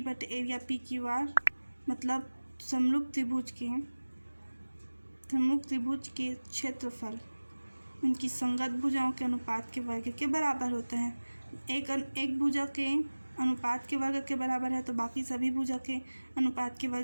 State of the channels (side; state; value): both; inverted; correlation -1.00